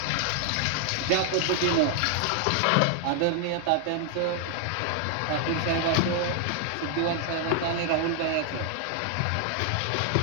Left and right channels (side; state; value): both; different; correlation 0.00